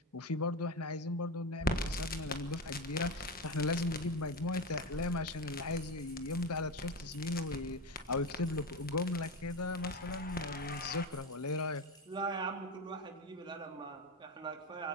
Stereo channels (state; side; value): normal; both; correlation 0.19